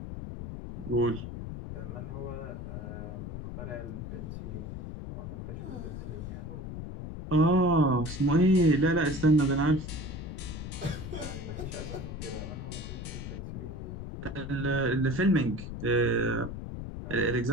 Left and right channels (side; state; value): left; noise; rumble, 8 dB below the sound